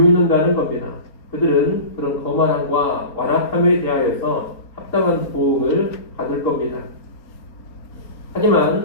겁니다. 그들은 그런 거만함과 완악함에 대하여서 합당한 보응을 받을 겁니다.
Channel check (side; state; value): right; late; 4.3 ms